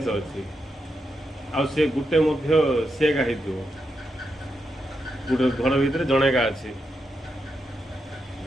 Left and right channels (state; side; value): normal; both; correlation 0.85